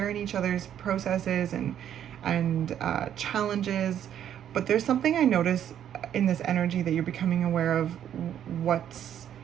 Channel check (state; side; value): quieter; left; 10.0 dB